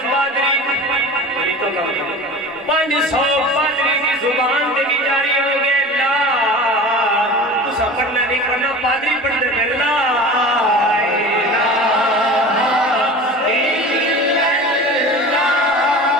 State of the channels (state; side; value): normal; both; correlation 0.36